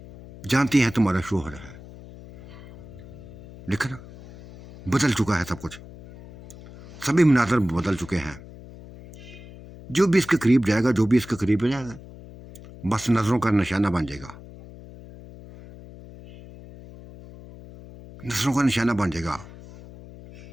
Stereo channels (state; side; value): noise; left; hum, 17 dB below the sound